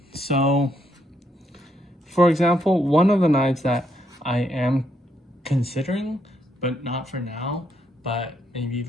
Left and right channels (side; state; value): both; normal; correlation 0.76